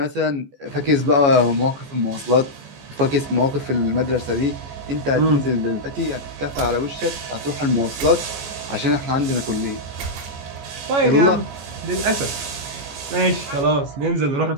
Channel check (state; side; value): late; left; 14 ms